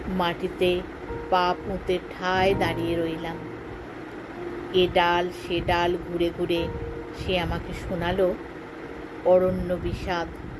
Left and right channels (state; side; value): identical; both; correlation 1.00